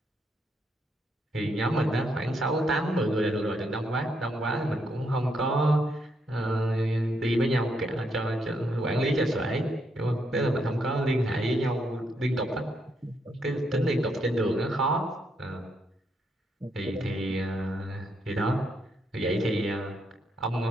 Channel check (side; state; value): both; normal; correlation 0.77